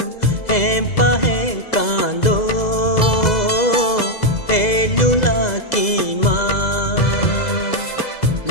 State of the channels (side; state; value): right; late; 2.0 ms